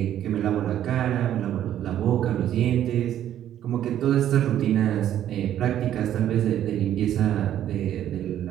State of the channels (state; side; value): quieter; left; 11.2 dB